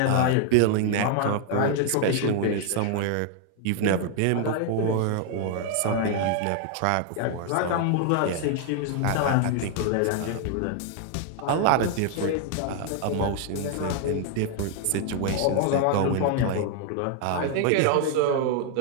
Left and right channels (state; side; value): different; both; correlation 0.00